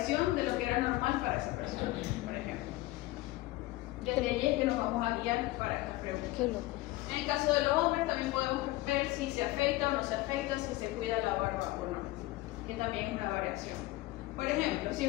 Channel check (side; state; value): right; quieter; 18.6 dB